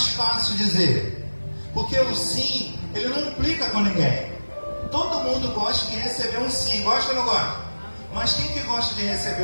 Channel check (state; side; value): inverted; both; correlation -1.00